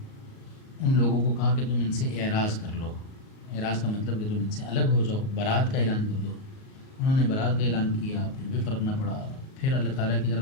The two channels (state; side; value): late; right; 38 ms